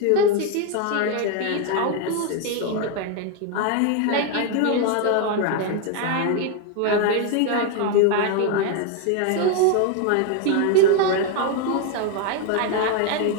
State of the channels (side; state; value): both; different; correlation 0.01